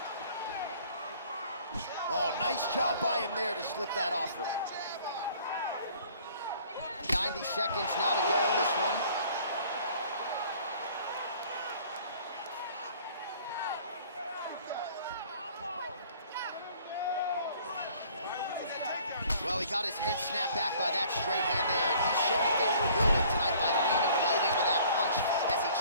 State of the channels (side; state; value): both; inverted; correlation -0.54